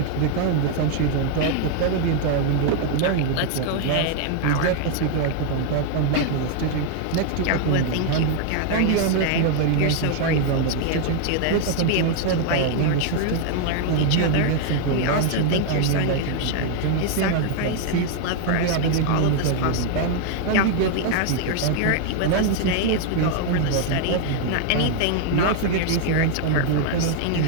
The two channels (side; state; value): both; different; correlation 0.00